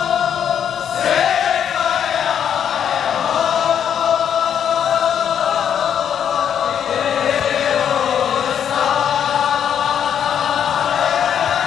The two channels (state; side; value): quieter; right; 8.7 dB